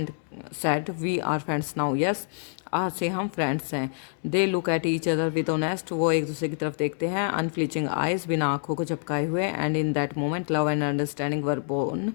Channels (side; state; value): right; silent; digital silence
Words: said we are friends now, yes आज से हम फ्रेंड्स हैं। They look at each other with honest, वो एक दूसरे की तरफ देखते हैं अनफ्लिचिंग आइज, बिना आंखों को झपकाए हुए। And in that moment love and understanding were born,